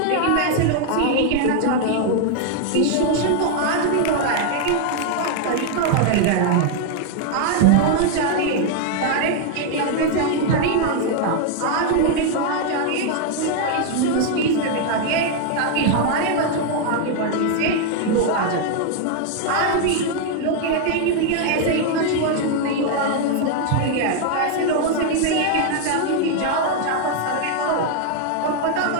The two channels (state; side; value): different; both; correlation 0.00